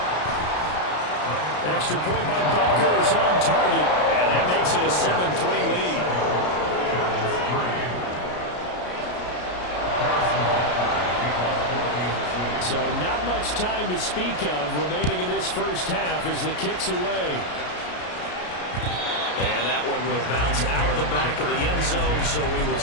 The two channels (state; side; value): late; right; 33 ms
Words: Extra point by Butker is on target, and that makes it a 7-3 lead. So not much time to speak of remaining in this first half as the kick's away. And that one will bounce out of the back of the end zone, so we will